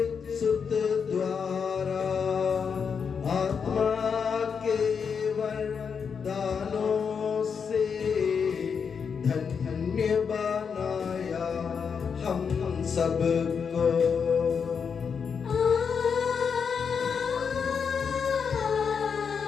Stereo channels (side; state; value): right; quieter; 6.3 dB